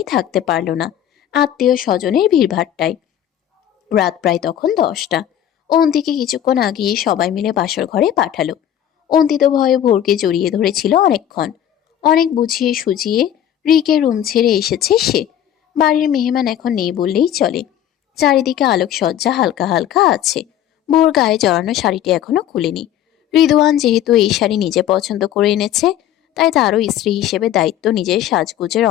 থাকতে পারল না আত্মীয় স্বজনের ভিড়ভাট্টায়। রাত প্রায় তখন 10টা। অন্তিকে কিছুক্ষণ আগেই সবাই মিলে বাসর ঘরে পাঠালো। অন্তিত ভয়ে ভোরকে জড়িয়ে ধরেছিল অনেকক্ষণ। অনেক বুঝিয়ে সুঝিয়ে রিকের রুম ছেড়ে এসেছে সে। বাড়ির মেহমান এখন নেই বললেই চলে। চারিদিকে আলোকসজ্জা হালকা হালকা আছে। ভোর গায়ে জড়ানো শাড়িটি এখনো খুলেনি। রিদওয়ান যেহেতু এই শাড়ি নিজে পছন্দ করে এনেছে, তাই তারও স্ত্রী হিসেবে দায়িত্ব নিজের সাজগোজের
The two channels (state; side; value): quieter; right; 10.9 dB